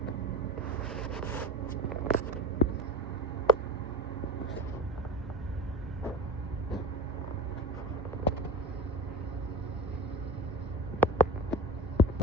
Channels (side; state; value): both; normal; correlation 0.30